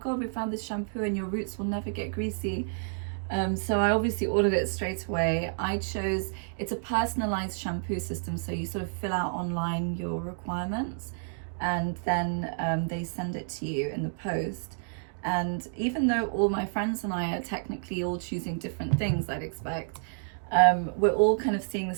we found this shampoo and your roots will never get greasy. So I obviously ordered it straight away. It's a personalized shampoo system. So you sort of fill out online your requirements and then they send it to you in the post. And even though all my friends and I are technically all choosing different things, I'd expect, we're all kind of seeing the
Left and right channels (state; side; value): silent; left; digital silence